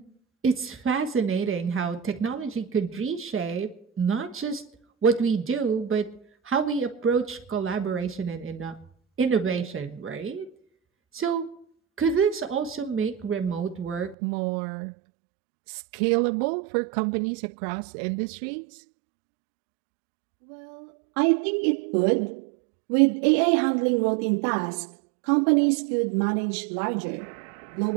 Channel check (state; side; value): drops out; left; at 14.2 s